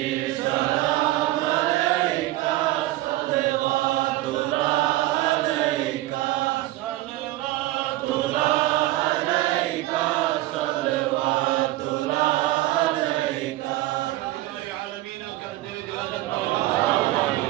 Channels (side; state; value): left; quieter; 17.0 dB